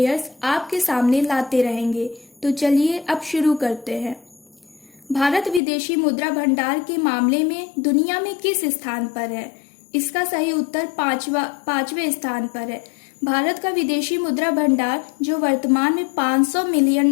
आपके सामने लाते रहेंगे। तो चलिए अब शुरू करते हैं। भारत विदेशी मुद्रा भंडार के मामले में दुनिया में किस स्थान पर है? इसका सही उत्तर पांचवें स्थान पर है। भारत का विदेशी मुद्रा भंडार, जो वर्तमान में 500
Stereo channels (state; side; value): drops out; right; at 5.6 s